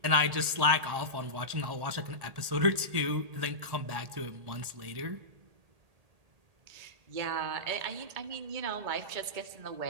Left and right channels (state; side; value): late; left; 1.8 ms